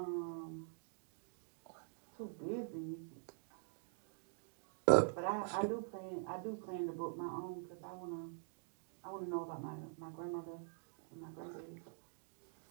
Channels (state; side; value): silent; left; digital silence